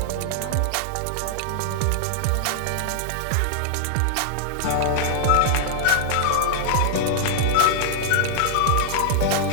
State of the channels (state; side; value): different; both; correlation -0.01